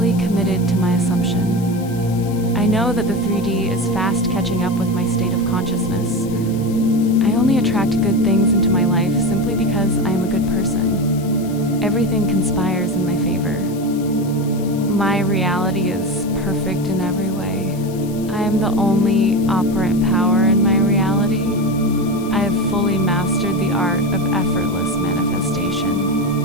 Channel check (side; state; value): left; noise; hiss, 19 dB below the sound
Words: committed to my assumption. I know that the 3D is fast catching up with my state of consciousness. I only attract good things into my life simply because I am a good person. Everything conspires in my favor. My reality is perfect in every way. I am the only operant power in my reality. I have fully mastered the art of effortless manifestation.